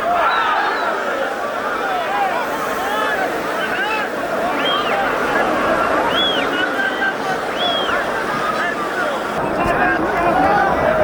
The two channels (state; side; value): identical; both; correlation 1.00